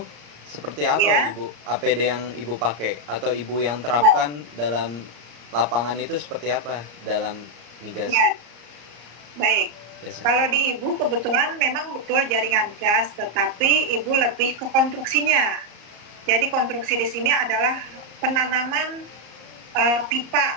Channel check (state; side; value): late; left; 34 ms